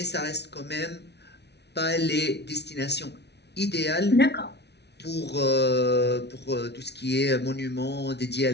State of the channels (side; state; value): right; late; 0.49 ms